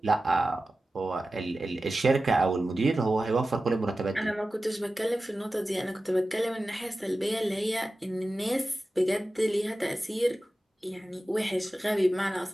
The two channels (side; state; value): both; normal; correlation 0.95